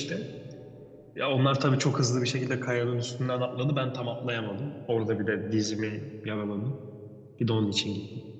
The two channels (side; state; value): both; identical; correlation 1.00